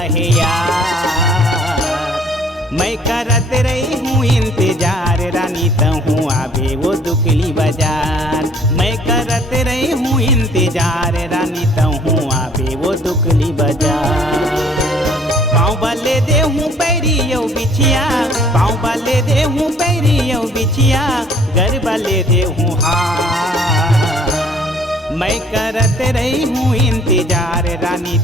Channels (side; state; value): both; normal; correlation 0.58